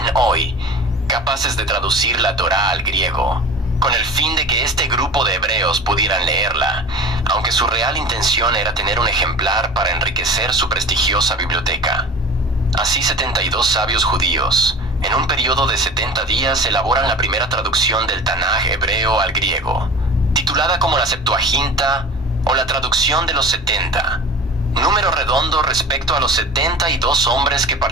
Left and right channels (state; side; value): normal; both; correlation 0.37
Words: hoy, capaces de traducir la Torá al griego, con el fin de que este grupo de hebreos pudieran leerla, aunque su real intención era tener un ejemplar para enriquecer su prestigiosa biblioteca. Así 72 sabios judíos, en un periodo de 70 días, elaboran la primera traducción del Tanaj hebreo al griego, titulada como la Septuaginta o la traducción de los 70, número redondo respecto a los 72 hombres que